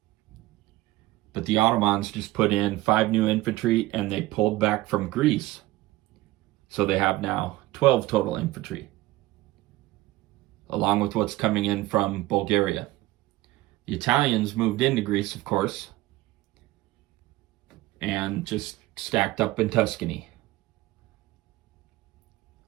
But the Ottomans just put in 5 new infantry and they pulled back from Greece. So they have now 12 total infantry, along with what's coming in from Bulgaria. The Italians moved into Greece, of course, and just stacked up in Tuscany.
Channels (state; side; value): quieter; left; 17.9 dB